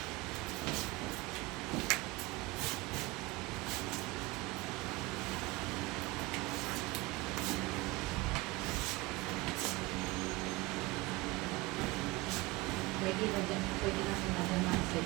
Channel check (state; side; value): quieter; left; 21.9 dB